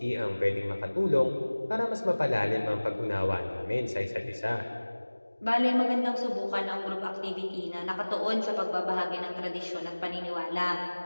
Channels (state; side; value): inverted; both; correlation -1.00